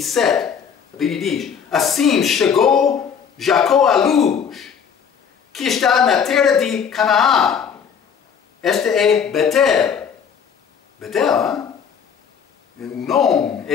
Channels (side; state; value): right; quieter; 7.2 dB